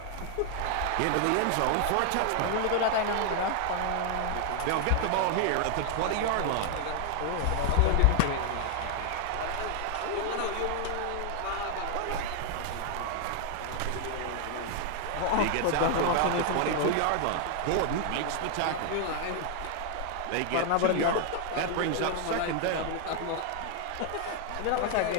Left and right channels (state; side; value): different; both; correlation 0.00